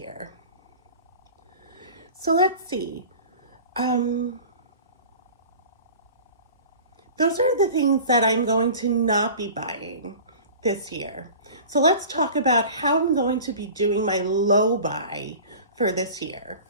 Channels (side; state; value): both; inverted; correlation -0.40